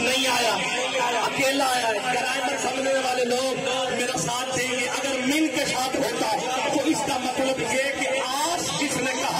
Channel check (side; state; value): both; identical; correlation 1.00